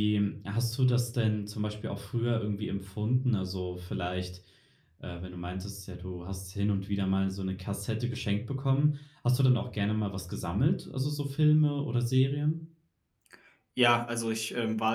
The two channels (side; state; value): both; identical; correlation 1.00